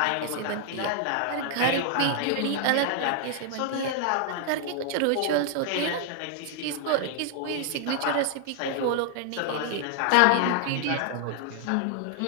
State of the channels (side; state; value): both; different; correlation 0.00